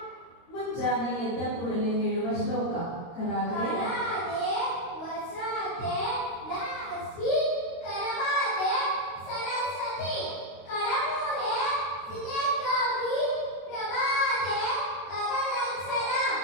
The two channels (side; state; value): right; late; 22 ms